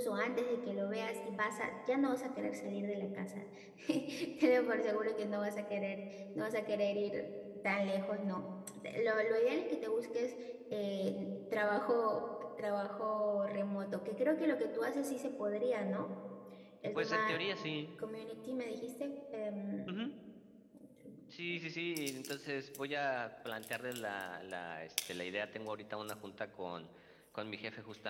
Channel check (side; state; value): both; identical; correlation 1.00